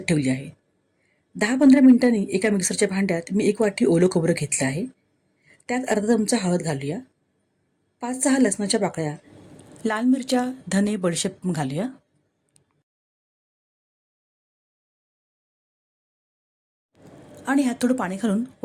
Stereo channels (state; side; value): identical; both; correlation 1.00